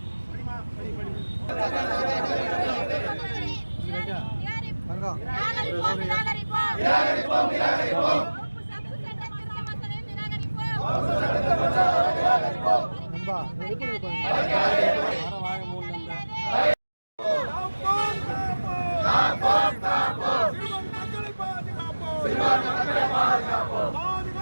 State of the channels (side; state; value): both; inverted; correlation -1.00